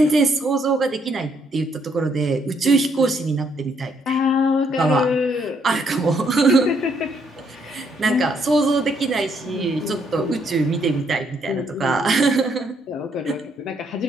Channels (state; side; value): normal; both; correlation 0.71